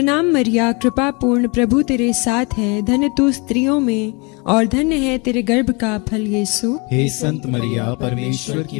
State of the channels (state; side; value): quieter; right; 29.7 dB